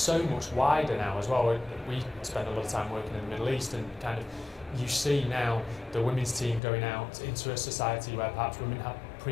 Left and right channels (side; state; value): right; drops out; at 6.6 s